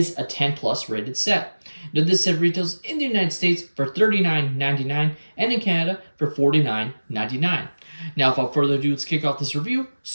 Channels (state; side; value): inverted; both; correlation -1.00